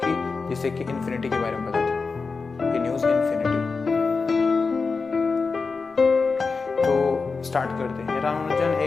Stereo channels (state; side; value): quieter; right; 4.5 dB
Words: जिसे कि इन्फिनिटी के बारे में पता था। ये न्यूज़ इन्फिनिटी। तो स्टार्ट करते हैं। रामानुजन